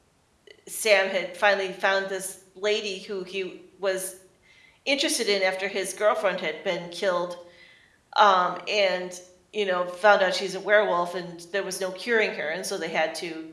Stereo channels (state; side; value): identical; both; correlation 1.00